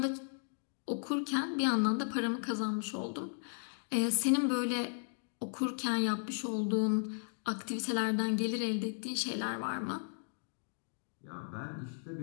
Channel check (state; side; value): silent; right; digital silence